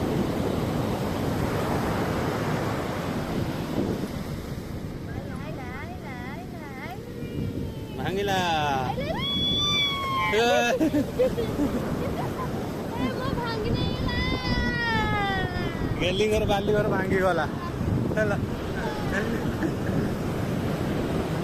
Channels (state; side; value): identical; both; correlation 1.00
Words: भांगिला गेली घर बाली घर भांगी गला